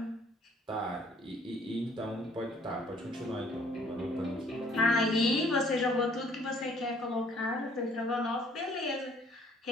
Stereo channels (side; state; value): both; normal; correlation 0.59